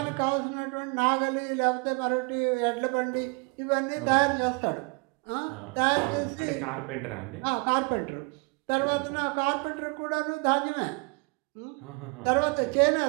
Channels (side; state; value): left; quieter; 31.8 dB